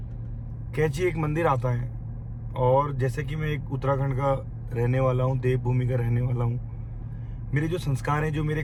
कैंची एक मंदिर आता है। और जैसे कि मैं एक उत्तराखंड का रहने वाला हूँ, देवभूमि का रहने वाला हूँ, मेरे जो संस्कार हैं, जो मेरे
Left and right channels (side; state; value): both; identical; correlation 1.00